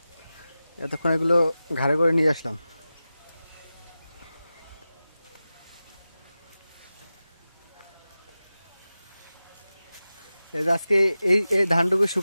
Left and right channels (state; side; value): inverted; both; correlation -0.94